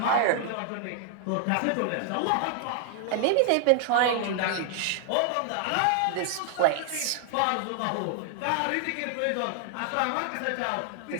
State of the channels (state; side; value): different; both; correlation 0.00